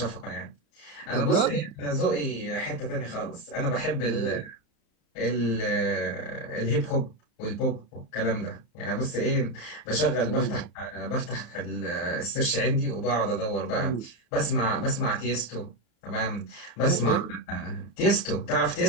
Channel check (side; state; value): right; late; 34 ms